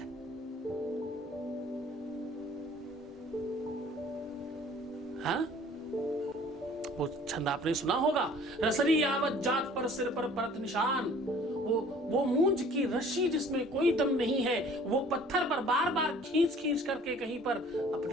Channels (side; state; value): both; normal; correlation 0.52